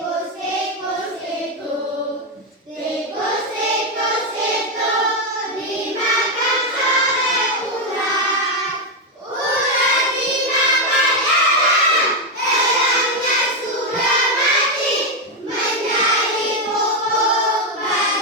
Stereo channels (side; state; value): both; normal; correlation 0.05